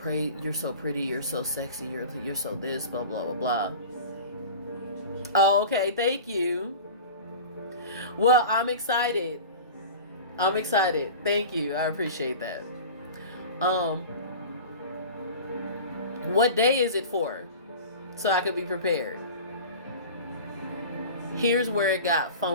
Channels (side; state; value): both; inverted; correlation -0.36